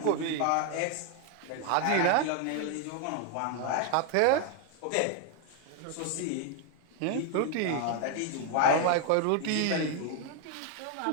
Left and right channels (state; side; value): different; both; correlation 0.01